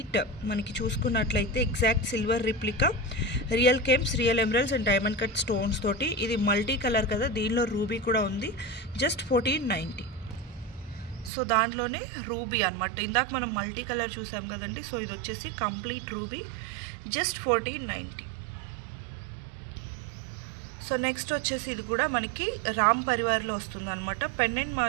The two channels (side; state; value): left; drops out; at 11.3 s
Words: మనకి చూసుకున్నట్లయితే exact silver replica, real gems, real emeralds and diamond cut stones తోటి. ఇది మల్టీ కలర్ కదా, దీనిలో రూబీ కూడా ఉంది. జస్ట్ 1490. సో దాంట్లోనే రూబీ అనమాట. ఇందాక మనం మల్టీ కలర్ చూసాం కదండి. సో ఇది వచ్చేసి complete ruby, just 1490. So next వచ్చేసి ఇది కూడా మనకి రామ్ పరివార్లో వస్తుంది అనమాట. పెండెంట్